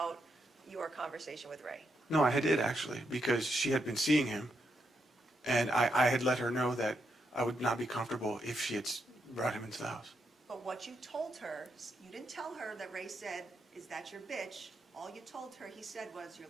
your conversation with Ray. No, I did actually, because she had been seeing him, and I had let her know that I would not be comfortable if she had brought him into the house. But what you told her, you didn't tell her that Ray said, "Is that your bitch?" All you told her, he said, was, "You're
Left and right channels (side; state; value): both; normal; correlation 0.81